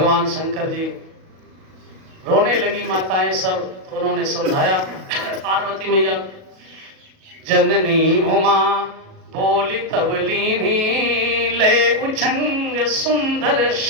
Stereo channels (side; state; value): left; late; 37 ms